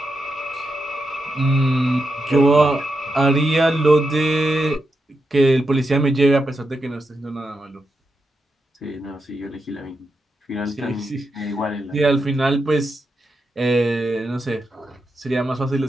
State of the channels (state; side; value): normal; both; correlation 0.86